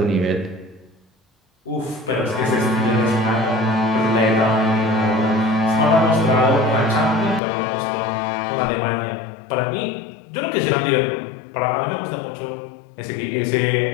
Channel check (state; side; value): drops out; right; at 7.4 s